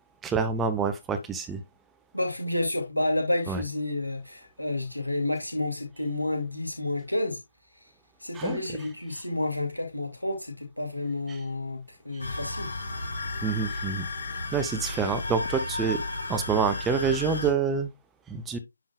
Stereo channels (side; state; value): both; inverted; correlation -0.37